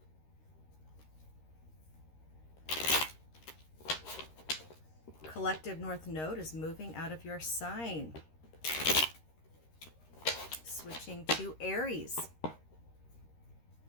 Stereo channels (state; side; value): late; right; 13 ms